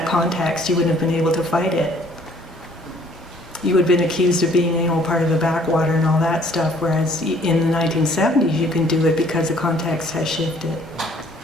context. You wouldn't have been able to fight it. You would have been accused of being, part of the backwater and all that stuff, whereas in the 1970s you can do it because the context has shifted.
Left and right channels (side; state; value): both; normal; correlation 0.59